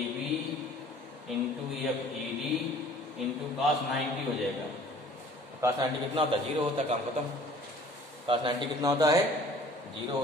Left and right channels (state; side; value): normal; both; correlation 0.51